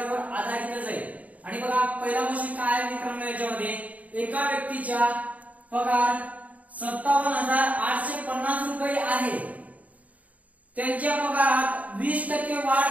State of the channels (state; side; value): late; left; 0.071 ms